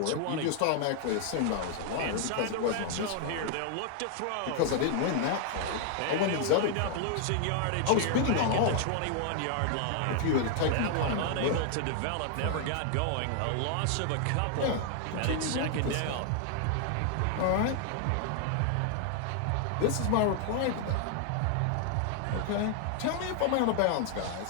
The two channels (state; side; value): different; both; correlation 0.00